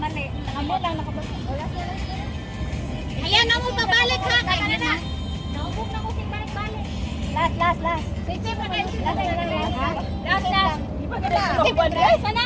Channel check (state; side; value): identical; both; correlation 1.00